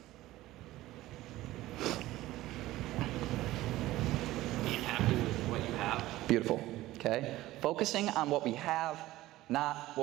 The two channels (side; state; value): left; quieter; 16.5 dB